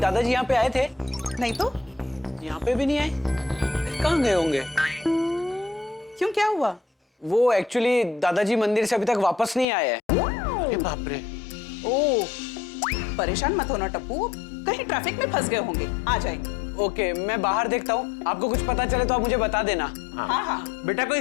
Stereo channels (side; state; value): right; drops out; at 9.7 s